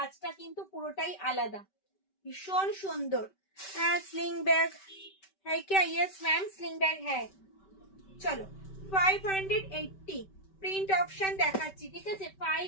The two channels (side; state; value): right; late; 5.2 ms